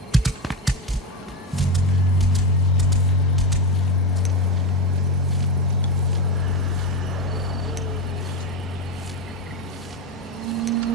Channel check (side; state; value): both; normal; correlation 0.14